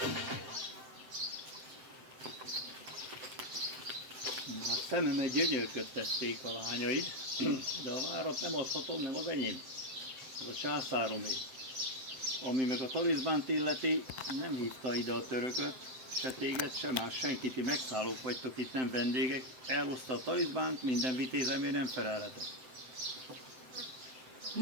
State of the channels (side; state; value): left; late; 7.8 ms